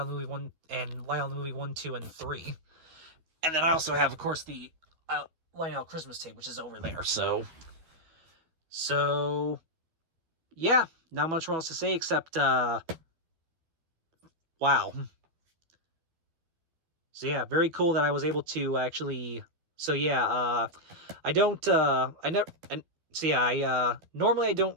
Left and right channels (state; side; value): late; left; 12 ms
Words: Movie 1, and Lionel Movie 1, 2, and 3. And then I also have, of course, the Lionel Christmas tape, which is over there. So yeah, not much more else to say except wow. So yeah, very cool that I was able to actually. So yeah, normally I